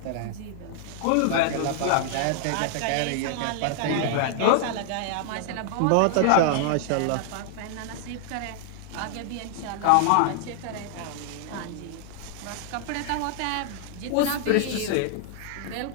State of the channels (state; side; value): different; both; correlation 0.00